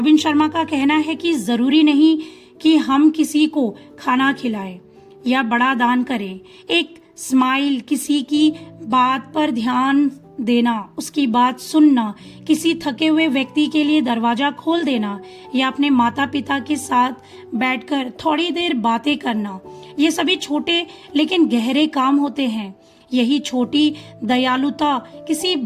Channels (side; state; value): both; identical; correlation 1.00